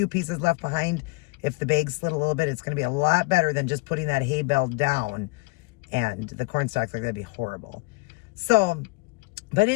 pieces left behind, if the bags slid a little bit, it's going to be a lot better than just putting that hay bale down and the corn stalks. Like, that'd be horrible. So, but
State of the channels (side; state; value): right; quieter; 26.3 dB